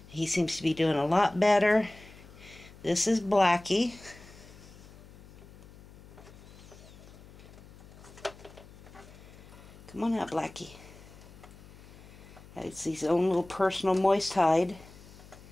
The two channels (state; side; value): noise; left; hum, 20 dB below the sound